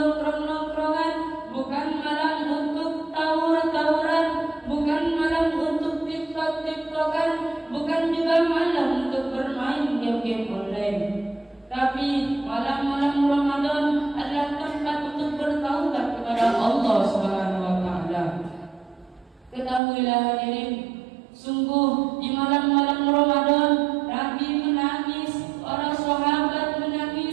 bukan malam untuk tawur-tawuran, bukan malam untuk TikTok-TikTokan, bukan juga malam untuk bermain game-game online. Tapi malam-malam Ramadan adalah tempat untuk bertaubat kepada Allah Subhanahu wa taala. Ketahuilah hadirin, sungguh di malam-malam Ramadan Nabi menangis, para sahabat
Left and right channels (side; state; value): left; drops out; at 19.8 s